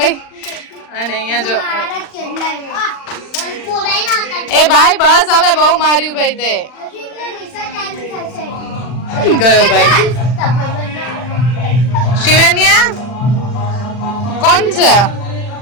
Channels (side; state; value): right; late; 40 ms